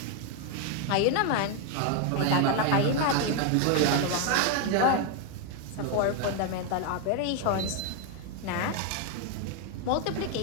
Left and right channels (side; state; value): both; different; correlation 0.01